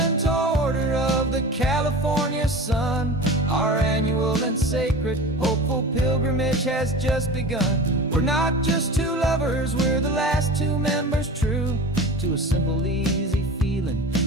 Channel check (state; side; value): normal; both; correlation 0.34